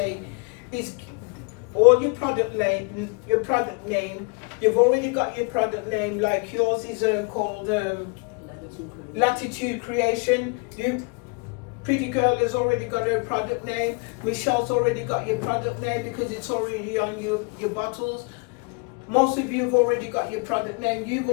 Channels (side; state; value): right; quieter; 33.4 dB